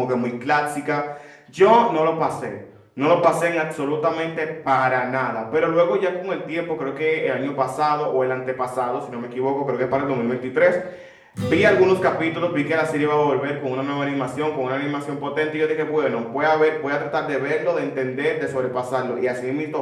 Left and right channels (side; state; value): both; identical; correlation 1.00